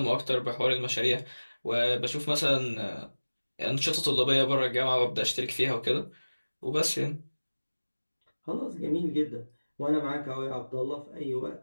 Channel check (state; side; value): inverted; both; correlation -1.00